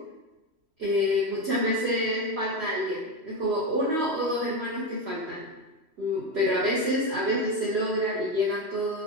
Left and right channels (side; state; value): left; late; 3.1 ms